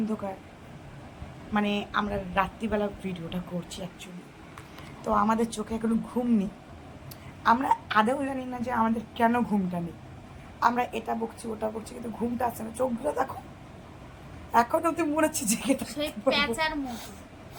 মানে আমরা রাত্রিবেলা ভিডিওটা করছি অ্যাকচুয়ালি। তো আমাদের চোখে এখনো ঘুম নেই, আমরা আদৌ জানি না যে আমাদের কেন ঘুমটা নেই। আমরা এটা বকছি ওটা বকছি কিন্তু ঘুমটা আসছে না। চোখগুলো দেখো এখন অব্দি মনে হচ্ছে জেগে প্যাচার মতো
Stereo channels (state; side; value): identical; both; correlation 1.00